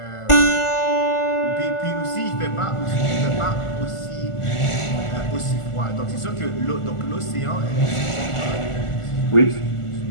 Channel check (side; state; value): right; late; 1.4 ms